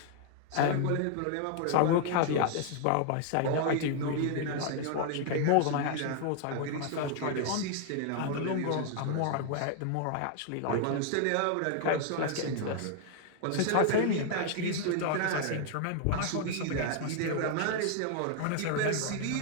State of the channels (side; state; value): both; different; correlation 0.00